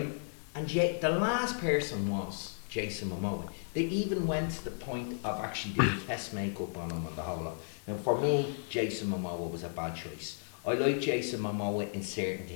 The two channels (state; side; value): silent; right; digital silence